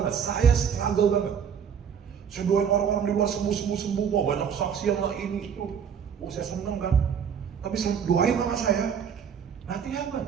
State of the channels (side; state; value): left; quieter; 7.5 dB